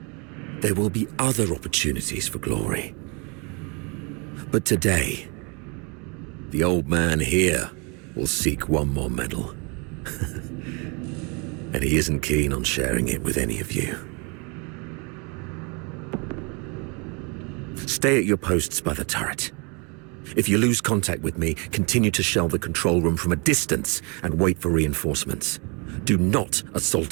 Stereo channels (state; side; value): quieter; left; 32.0 dB